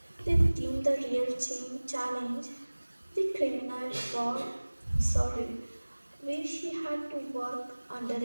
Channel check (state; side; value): inverted; both; correlation -1.00